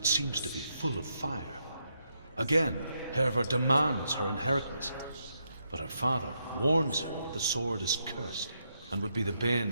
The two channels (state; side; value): inverted; both; correlation -0.80